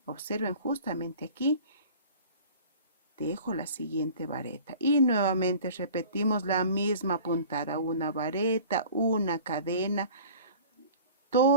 Observen justamente aquí, tejo la siguiente vareta y nuevamente repetimos la misma puntada, una vareta, una cadena,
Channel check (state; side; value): inverted; both; correlation -0.44